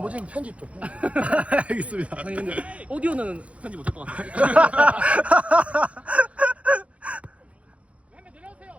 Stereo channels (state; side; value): late; left; 0.063 ms